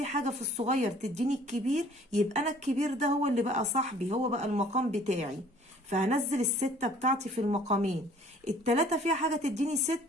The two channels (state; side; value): normal; both; correlation 0.54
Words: حاجة في الصغير تديني الكبير، يبقى أنا الكبير ده هو اللي بقى صاحبي، هو بقى المقام بتاعي. فهنزل ال6 بتاعتي في المقامين. ال3 فيها حاجة تديني